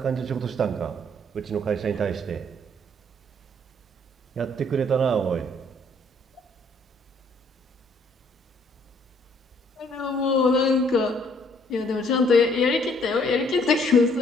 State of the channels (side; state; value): both; normal; correlation 0.64